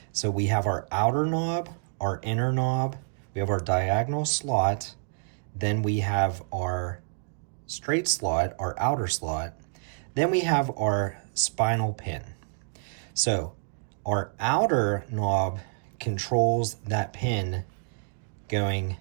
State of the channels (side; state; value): left; silent; digital silence